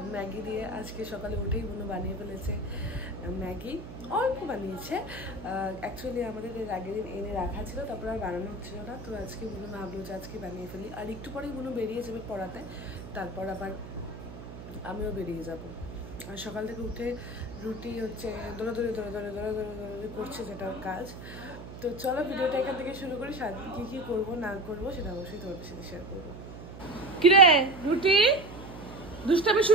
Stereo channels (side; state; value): right; noise; hum, 12 dB below the sound